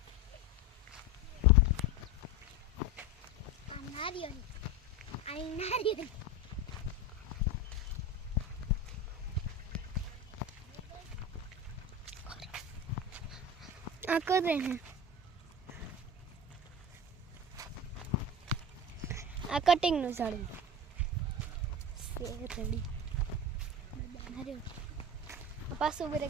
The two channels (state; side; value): normal; both; correlation 0.27